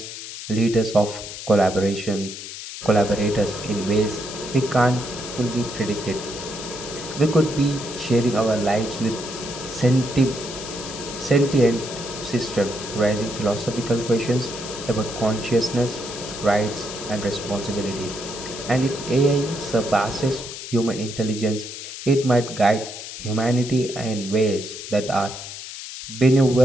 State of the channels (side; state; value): left; noise; hiss, 10 dB below the sound